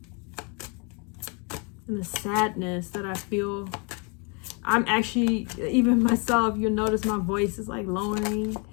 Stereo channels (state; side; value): quieter; right; 34.0 dB